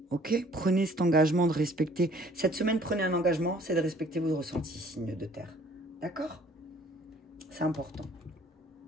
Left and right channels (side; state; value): both; normal; correlation 0.57